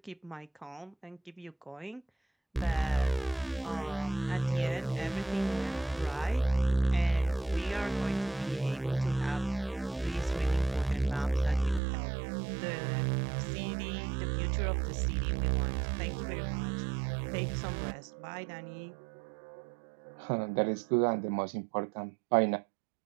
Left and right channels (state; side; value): drops out; left; at 11.8 s